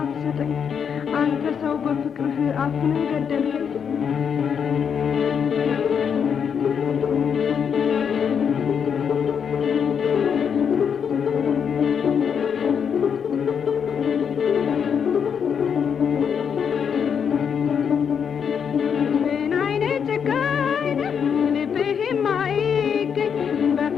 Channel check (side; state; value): right; quieter; 7.2 dB